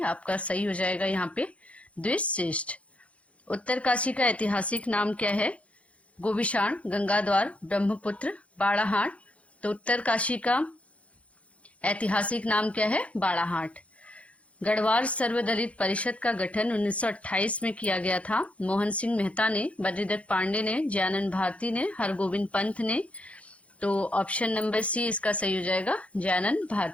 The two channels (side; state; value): right; late; 0.063 ms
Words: आपका सही हो जाएगा यहाँ पे, द्विश्रेष्ठ। उत्तरकाशी का ऐतिहासिक नाम क्या है? गोविशाण, गंगाद्वार, ब्रह्मपुत्र, बाड़ाहाट। तो उत्तरकाशी का ऐतिहासिक नाम क्या है? बाड़ाहाट। गढ़वाल सर्वदलित परिषद का गठन 1928 में किया गया था। मोहन सिंह मेहता ने, बद्रीदत्त पांडे ने, जयानंद भारती ने, हरगोविंद पंत ने। तो ऑप्शन नंबर सी इसका सही हो जाएगा, जयानंद